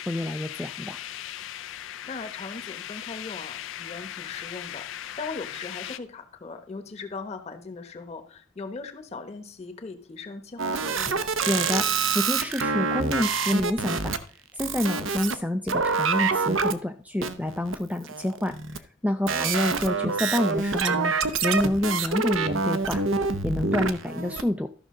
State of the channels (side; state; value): both; normal; correlation 0.48